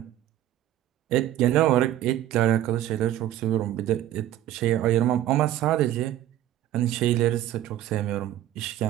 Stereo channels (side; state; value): left; quieter; 12.8 dB